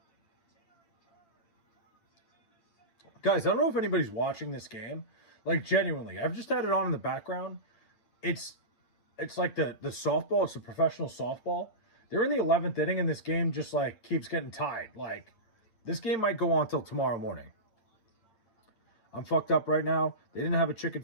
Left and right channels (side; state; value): right; late; 8.8 ms